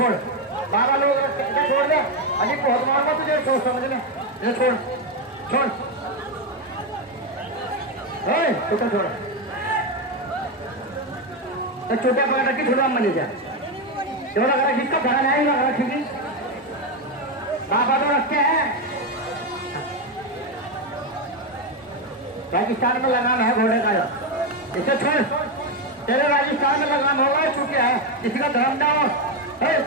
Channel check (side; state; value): both; normal; correlation 0.08